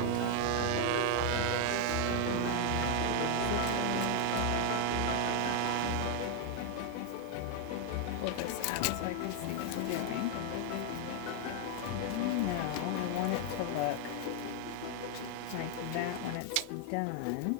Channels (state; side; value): different; both; correlation 0.01